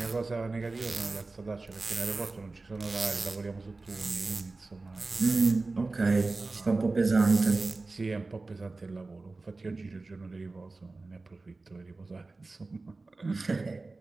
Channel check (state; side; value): quieter; left; 3.5 dB